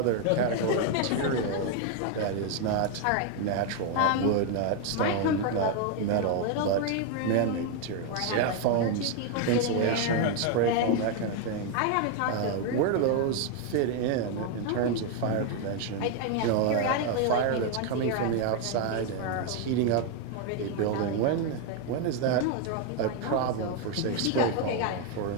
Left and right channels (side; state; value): both; different; correlation 0.01